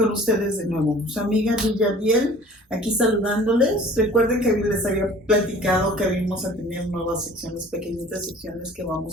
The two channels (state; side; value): normal; both; correlation 0.48